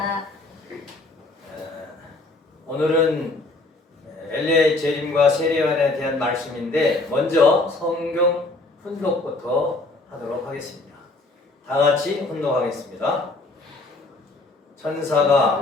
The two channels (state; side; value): quieter; right; 3.1 dB